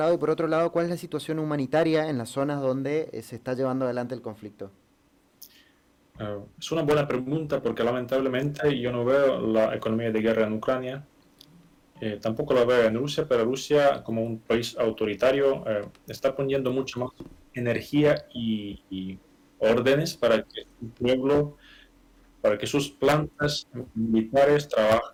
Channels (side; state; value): both; identical; correlation 1.00